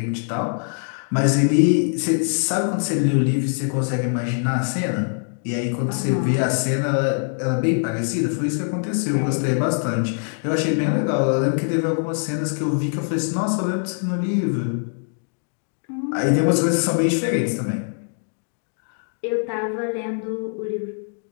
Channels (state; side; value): silent; right; 64 dB below the other